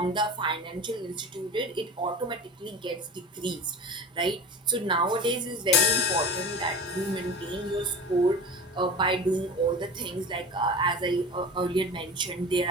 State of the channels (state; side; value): normal; both; correlation 0.34